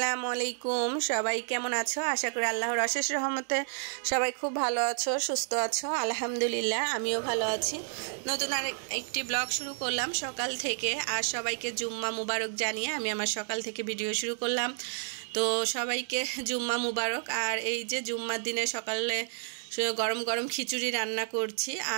আলাইকুম। সবাই কেমন আছো? আশা করি আল্লাহর অশেষ রহমতে সবাই খুব ভালো আছো, সুস্থ আছো। আলহামদুলিল্লাহ, আমিও ভালো আছি। নতুন আর একটি ব্লগ শুরু করলাম সকাল থেকে। আর সবাইকে জুম্মা মুবারক জানিয়ে আমি আমার সকাল থেকে ভিডিও শুরু করলাম। তো সবাইকে জুম্মা মুবারক। আর এই যে জুম্মার দিনে সকালে গরম গরম খিচুড়ি রান্না করছি।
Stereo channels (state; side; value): silent; left; 57 dB below the other